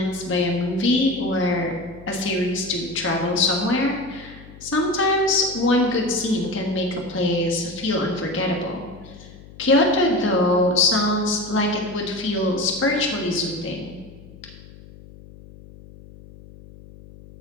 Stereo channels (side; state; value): left; noise; hum, 19 dB below the sound